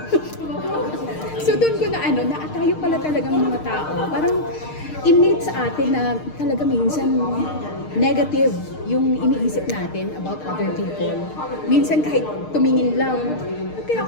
So, doon ko na tayo pala talagang mga tao. Parang innate sa atin na talaga minsan negative yung iniisip natin about other people. Minsan kahit tumingin lang, ba't kaya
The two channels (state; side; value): late; right; 6.5 ms